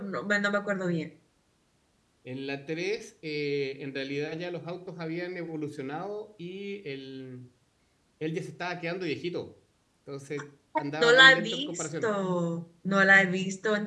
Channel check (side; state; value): both; identical; correlation 1.00